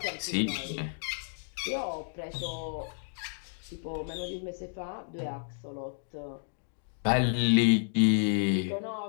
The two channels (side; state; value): right; silent; digital silence